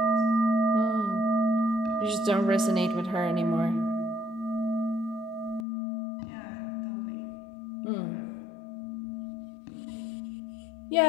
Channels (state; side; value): drops out; right; at 5.7 s